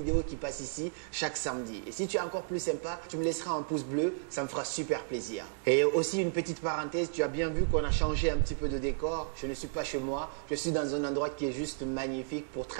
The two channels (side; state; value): left; silent; digital silence